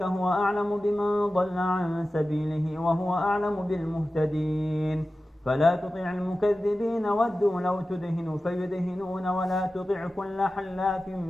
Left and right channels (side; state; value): both; normal; correlation 0.95